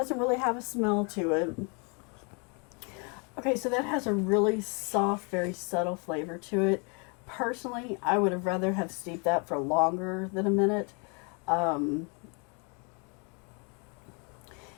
really have a smell to it. Okay, so that has a really soft, very subtle flavor to it. Personally, I would have rather have steeped that for longer than a minute.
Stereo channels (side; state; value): right; quieter; 34.6 dB